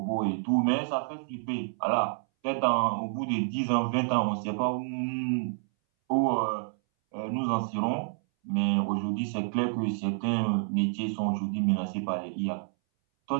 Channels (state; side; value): silent; left; 59 dB below the other